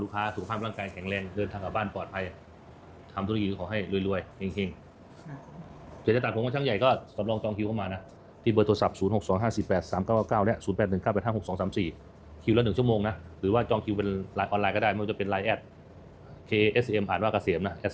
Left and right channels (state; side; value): identical; both; correlation 1.00